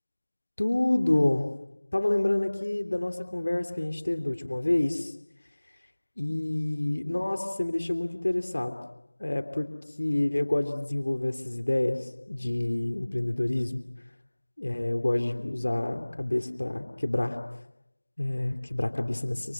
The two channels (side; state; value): both; inverted; correlation -1.00